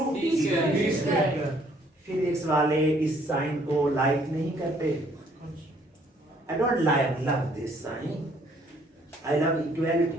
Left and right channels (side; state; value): both; normal; correlation 0.63